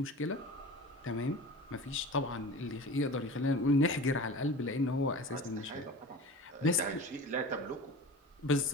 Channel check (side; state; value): both; normal; correlation 0.35